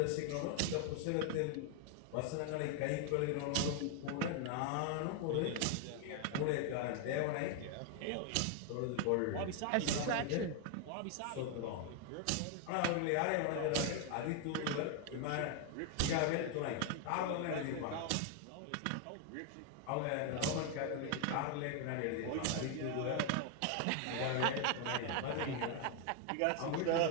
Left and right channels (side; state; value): both; different; correlation 0.01